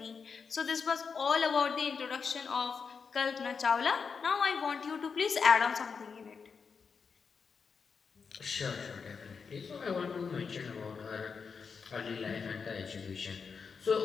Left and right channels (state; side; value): quieter; right; 5.6 dB